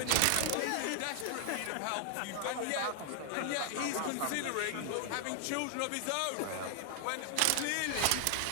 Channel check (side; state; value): both; different; correlation 0.00